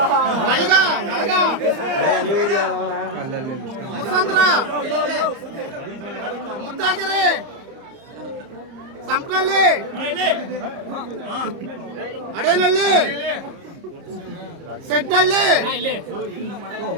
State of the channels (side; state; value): left; late; 30 ms